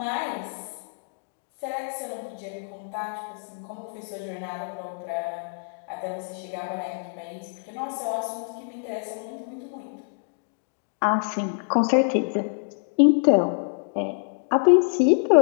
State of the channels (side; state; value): right; silent; digital silence